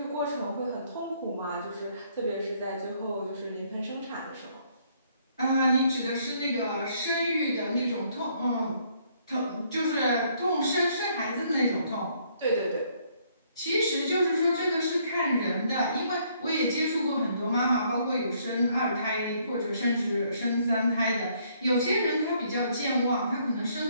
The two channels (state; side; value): inverted; both; correlation -0.67